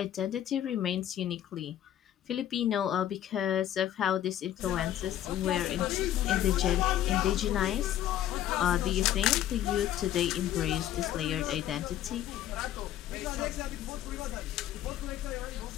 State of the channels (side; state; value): right; quieter; 11.8 dB